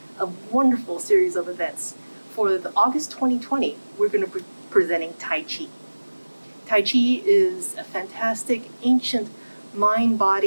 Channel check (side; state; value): both; inverted; correlation -1.00